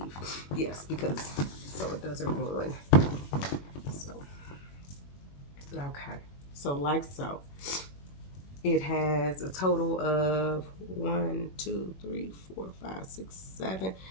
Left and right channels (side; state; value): right; late; 21 ms